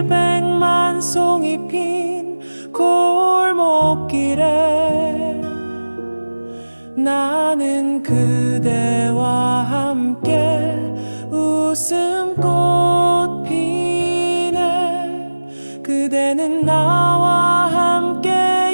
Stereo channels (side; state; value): both; inverted; correlation -1.00